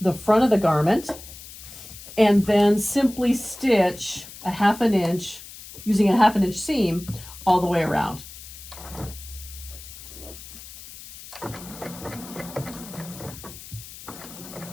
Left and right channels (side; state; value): left; noise; hiss, 15 dB below the sound